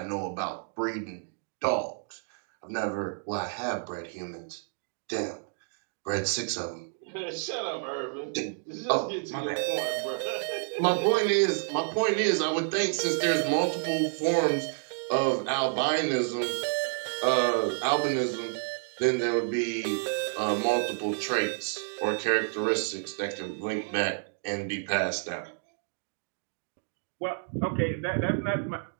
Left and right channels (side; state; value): left; silent; 58 dB below the other